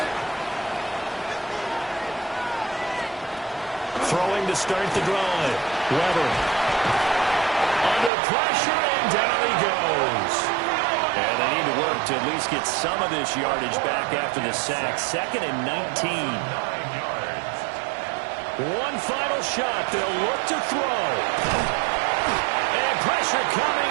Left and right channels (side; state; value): left; drops out; at 8.1 s